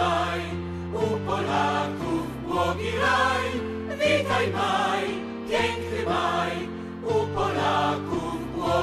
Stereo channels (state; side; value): identical; both; correlation 1.00